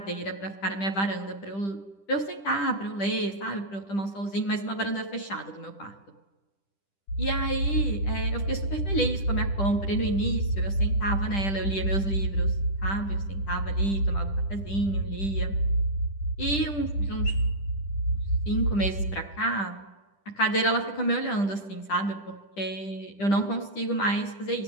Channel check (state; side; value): late; right; 10 ms